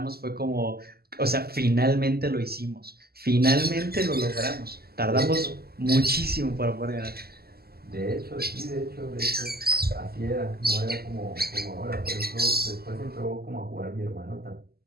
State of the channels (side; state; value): left; late; 0.45 ms